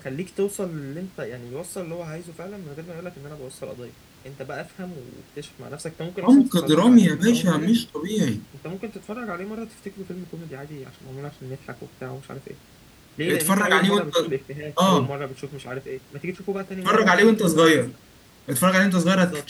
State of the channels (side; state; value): both; identical; correlation 1.00